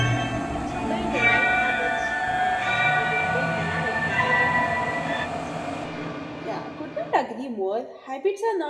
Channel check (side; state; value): both; identical; correlation 1.00